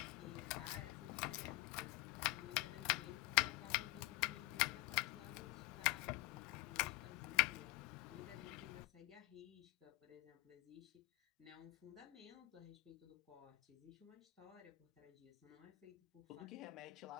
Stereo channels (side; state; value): right; quieter; 20.9 dB